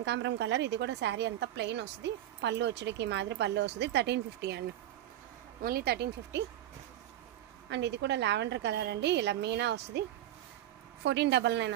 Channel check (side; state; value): left; quieter; 12.7 dB